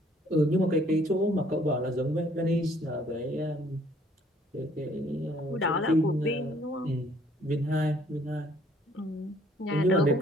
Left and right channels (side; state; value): both; normal; correlation 0.61